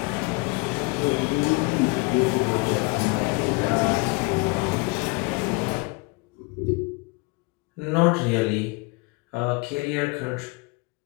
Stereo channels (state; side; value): quieter; right; 28.3 dB